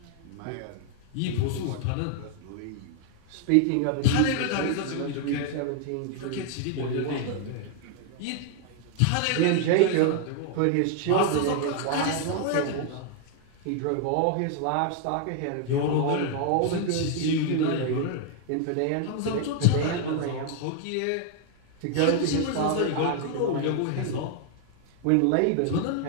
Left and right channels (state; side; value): different; both; correlation 0.00